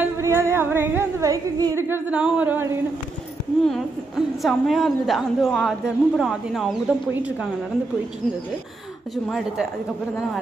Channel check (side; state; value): left; quieter; 3.3 dB